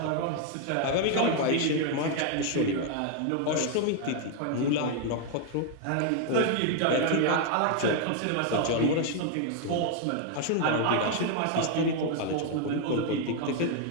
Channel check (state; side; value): different; both; correlation 0.00